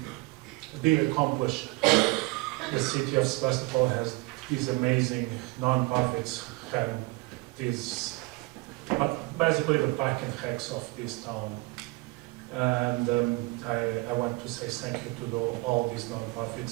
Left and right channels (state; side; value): quieter; left; 24.7 dB